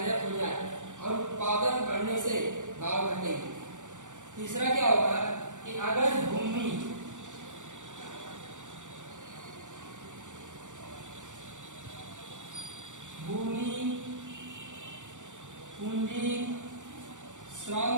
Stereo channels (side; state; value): left; late; 0.86 ms